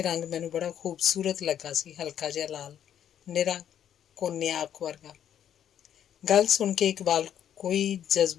ਰੰਗ ਮੈਨੂੰ ਬੜਾ ਖੂਬਸੂਰਤ ਲੱਗਾ ਸੀ, ਹਲਕਾ ਜਿਹਾ ਲਾਲ, ਨਿਰਾ ਕੋਨਿਆਕ ਵਰਗਾ। ਗੱਲ ਸੁਣ ਕੇ ਇਕਬਾਲ ਕੋਈ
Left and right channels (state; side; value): quieter; right; 9.8 dB